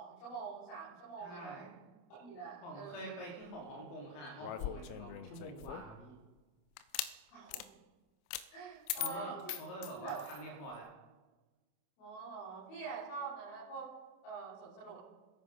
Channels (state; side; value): late; right; 28 ms